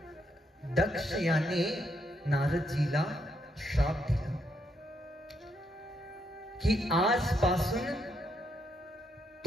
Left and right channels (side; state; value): both; normal; correlation 0.76